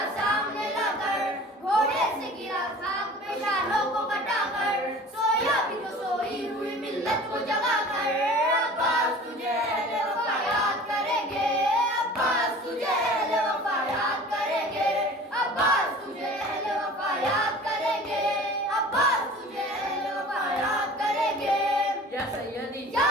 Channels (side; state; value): both; normal; correlation 0.43